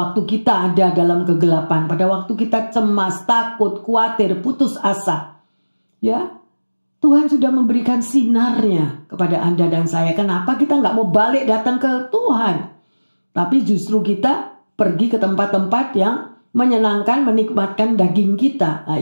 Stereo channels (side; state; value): both; inverted; correlation -1.00